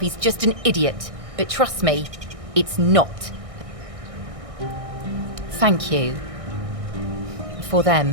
just an idiot. But trust me, it's not. Thank you. For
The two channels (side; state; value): left; late; 1.6 ms